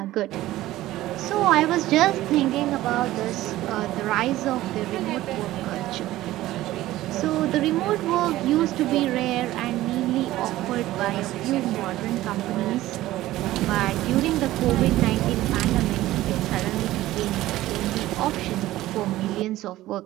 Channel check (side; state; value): left; quieter; 15.8 dB